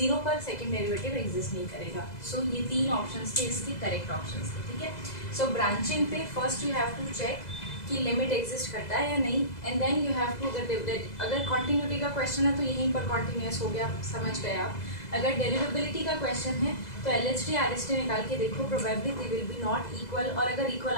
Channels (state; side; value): late; right; 2.0 ms